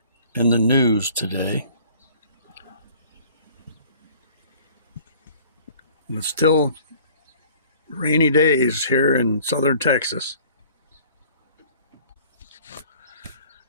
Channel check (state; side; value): inverted; both; correlation -0.51